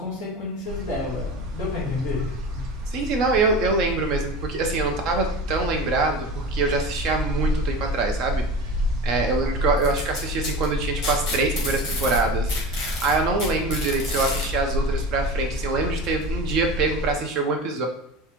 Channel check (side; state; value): both; normal; correlation 0.31